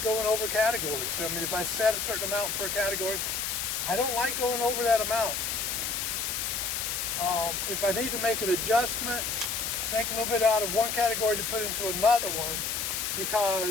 going over categories, I mean, if I set a certain amount for a category, I don't like going over that amount. If I need to make an adjustment, take a little bit out of one category to put into another one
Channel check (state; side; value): noise; left; hiss, 1 dB below the sound